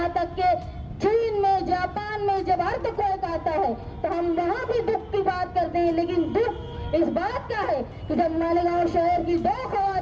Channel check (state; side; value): identical; both; correlation 1.00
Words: तक के चीन में, जापान में जब अर्थक्वेक आता है तो हम वहाँ भी दुख की बात करते हैं। लेकिन दुख इस बात का है कि जब मालेगांव शहर की 2